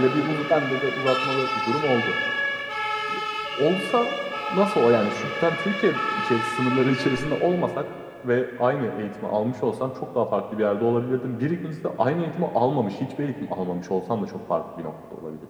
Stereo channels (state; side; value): identical; both; correlation 1.00